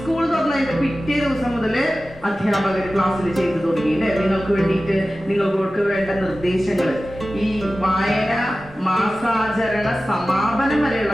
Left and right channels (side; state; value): both; normal; correlation 0.95